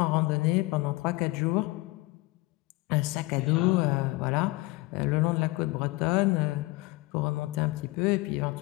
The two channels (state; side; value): quieter; right; 21.5 dB